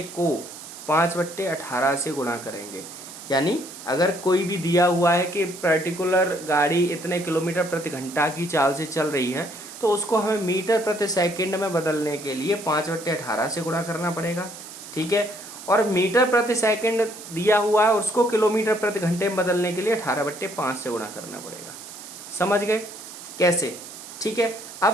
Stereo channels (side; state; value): right; noise; hiss, 14 dB below the sound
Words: को 5/18 से गुणा करेंगे। यानी अगर कोई भी दिया हुआ है कि पर्टिकुलर गाड़ी इतने किलोमीटर प्रति घंटा की चाल से चल रही है, तो उसको हमें मीटर प्रति सेकंड में बदलने के लिए 5/18 से गुणा करना पड़ेगा। ठीक है, और मीटर प्रति सेकंड दिया हुआ है, उसको किलोमीटर प्रति घंटे में बदलने के लिए 18/5 से गुणा करना पड़ेगा। समझ गए कैसे? ठीक है, अब